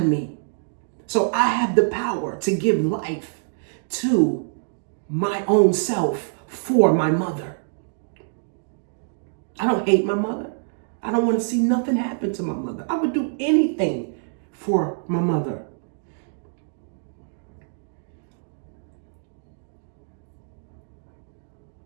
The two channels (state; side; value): silent; left; digital silence